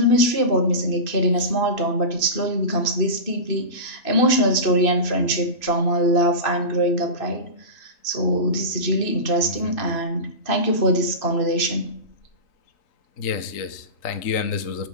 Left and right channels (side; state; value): right; late; 3.8 ms